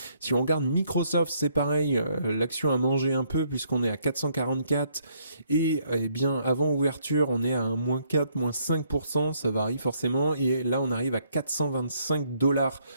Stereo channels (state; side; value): inverted; both; correlation -0.69